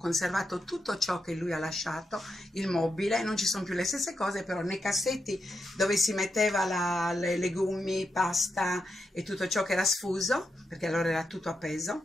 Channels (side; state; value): both; normal; correlation 0.85